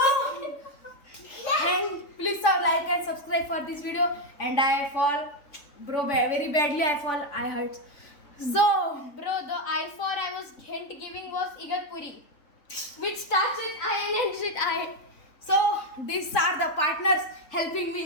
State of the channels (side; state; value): right; late; 3.5 ms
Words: And please like and subscribe for this video. And I fall, bro, very badly. I hurt. So, Bro, the I was hint giving was Igatpuri, which starts with I and ends with I. So these are the partners helping me